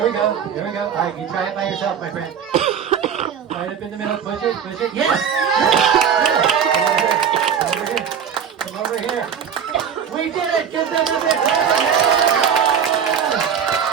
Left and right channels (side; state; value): left; quieter; 7.8 dB